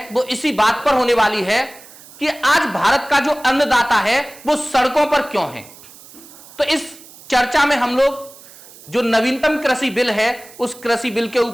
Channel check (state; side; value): noise; right; hiss, 20 dB below the sound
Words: वो इसी बात पर होने वाली है कि आज भारत का जो अन्नदाता है वो सड़कों पर क्यों है। तो इस चर्चा में हम लोग जो नवीनतम कृषि बिल है उस कृषि बिल के